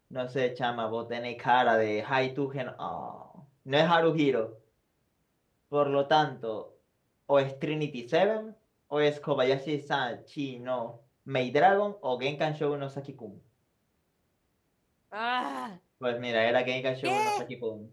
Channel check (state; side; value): identical; both; correlation 1.00